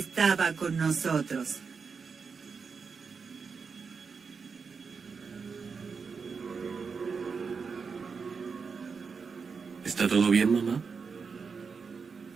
con nosotros. ¿Está todo bien, mamá?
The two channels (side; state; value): left; quieter; 5.4 dB